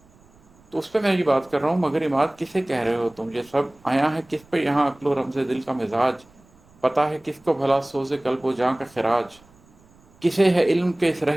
تو اس پہ میں یہ بات کر رہا ہوں، مگر عماد کسے کہہ رہے ہو تم؟ یہ سب آیا ہے کس پہ یہاں؟ عقل و رمز دل کا مزاج پتہ ہے کس کو بھلا سوز قلب و جاں کا خراج؟ کسے ہے علم کے اس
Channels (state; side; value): noise; right; rumble, 29 dB below the sound